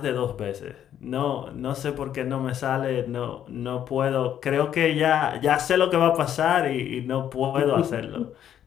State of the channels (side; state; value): right; quieter; 10.2 dB